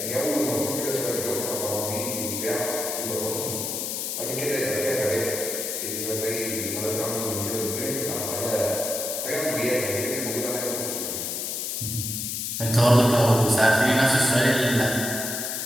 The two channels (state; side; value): noise; left; hiss, 3 dB below the sound